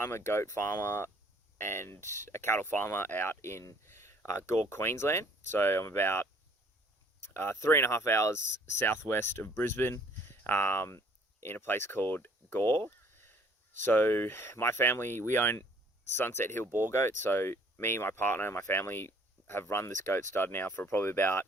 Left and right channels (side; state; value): both; normal; correlation 0.58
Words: a goat farmer and a cattle farmer out in Gore, Queensland. So I'm about 3.5 hours southwest of Brisbane in a place called Gore. So my family, we own Sunset Hill Boar Goat. So me, my partner, and my family have run this goat stud now for probably about